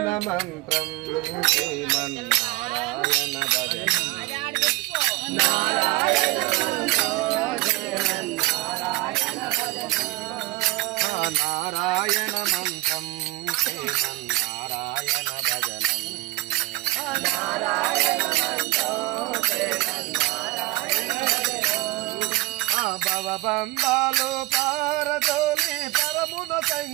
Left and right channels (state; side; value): quieter; left; 20.2 dB